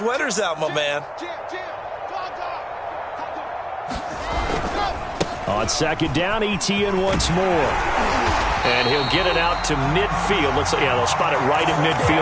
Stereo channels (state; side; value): identical; both; correlation 1.00